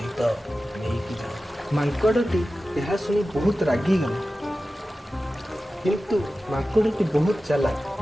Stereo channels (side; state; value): both; normal; correlation 0.94